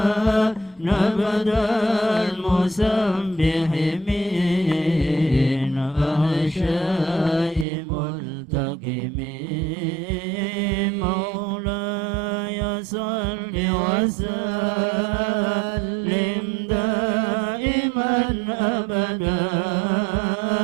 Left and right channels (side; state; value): left; drops out; at 7.7 s